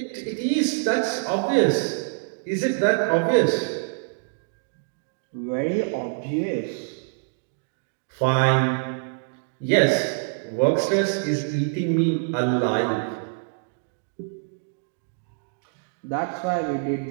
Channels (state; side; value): silent; left; digital silence